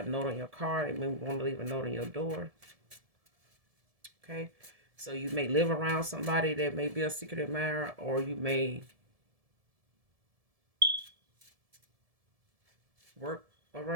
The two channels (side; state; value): left; late; 1.7 ms